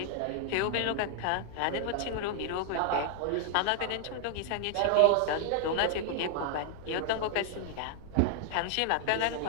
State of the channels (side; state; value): both; different; correlation 0.00